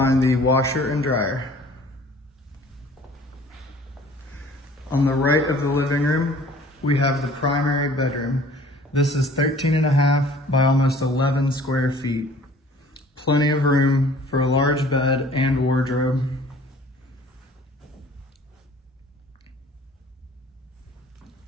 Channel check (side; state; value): both; normal; correlation 0.51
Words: the washer and dryer. On the right of the living room, we have the primary bedroom. This is 13.5 by almost 11 square feet. Plenty of room for a large bed and wardrobe.